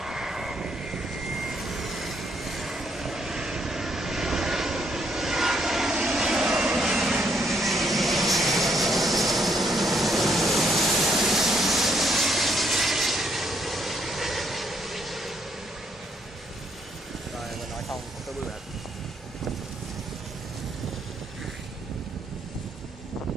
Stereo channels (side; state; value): both; normal; correlation 0.73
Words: Rồi mình nói xong không có bự hết.